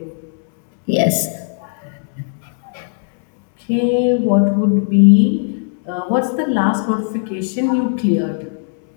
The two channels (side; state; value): right; silent; digital silence